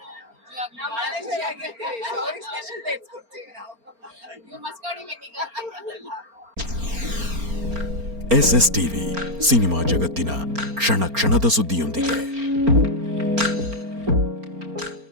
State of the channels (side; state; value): left; late; 4.4 ms